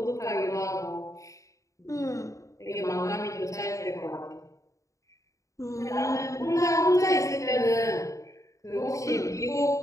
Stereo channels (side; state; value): right; late; 0.15 ms